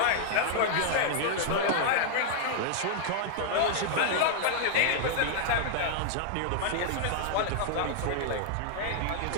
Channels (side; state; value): both; different; correlation -0.01